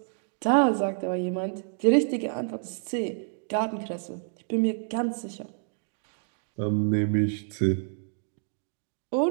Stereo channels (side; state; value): left; silent; digital silence